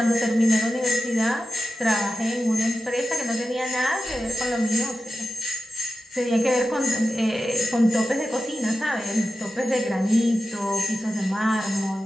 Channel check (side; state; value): both; normal; correlation 0.92